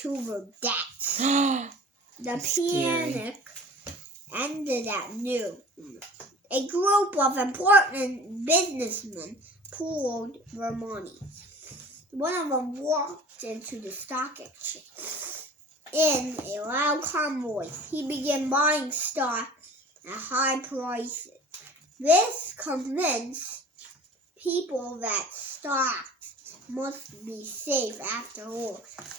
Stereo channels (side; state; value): both; normal; correlation 0.43